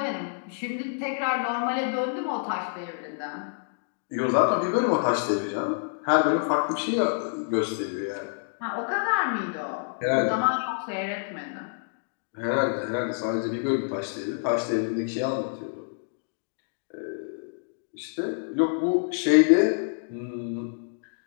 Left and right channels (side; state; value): right; silent; digital silence